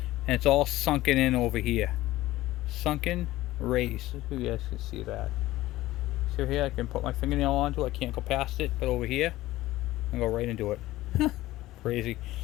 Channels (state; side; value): quieter; right; 16.6 dB